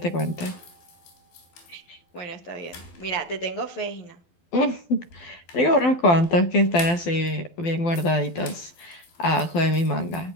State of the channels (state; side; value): late; right; 12 ms